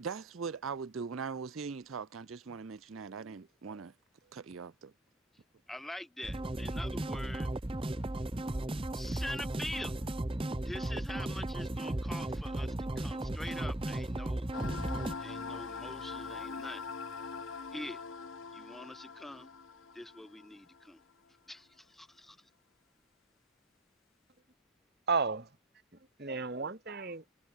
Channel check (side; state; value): both; normal; correlation 0.51